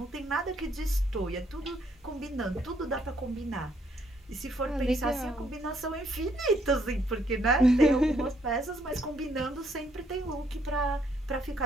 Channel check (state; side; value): normal; both; correlation 0.70